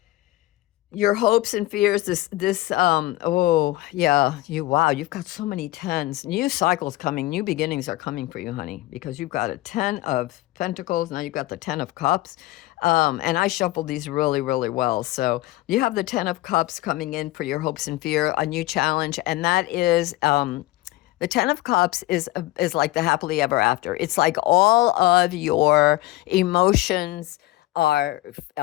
Your hopes and fears, oh yeah, you've got so many tens. New cycles coming, new beginnings are coming for you, honey, because you've got a 10 of Pentacles, now you've got the 10 of Cups. And I shuffled these really, really well. So you have the 10 of Cups coming in for your hopes and fear, a new challenge, and that is, the 10 of Cups is like the happily ever after. It's like all of your emotions are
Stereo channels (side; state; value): right; quieter; 17.9 dB